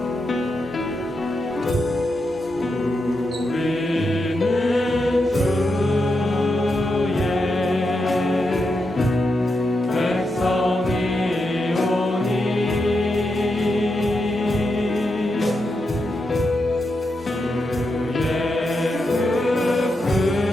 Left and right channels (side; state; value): both; normal; correlation 0.85